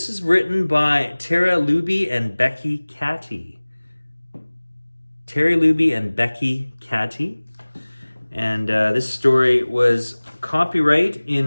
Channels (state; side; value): inverted; both; correlation -1.00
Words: is written by Luebbe and Becky Cattie. Luebbe and Becky Cattie. And this story was copyright